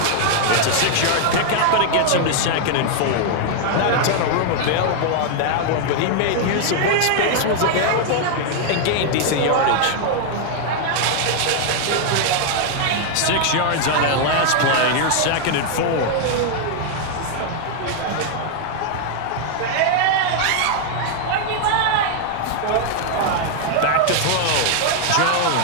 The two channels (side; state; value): both; different; correlation 0.00